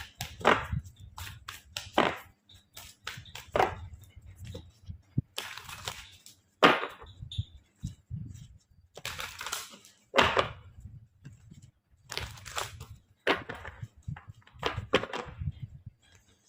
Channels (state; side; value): identical; both; correlation 1.00